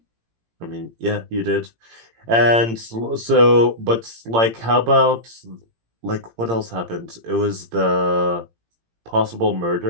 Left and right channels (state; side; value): late; left; 18 ms